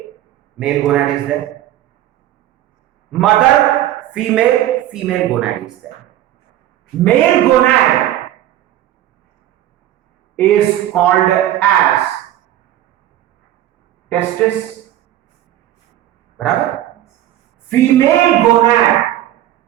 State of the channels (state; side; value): quieter; left; 13.1 dB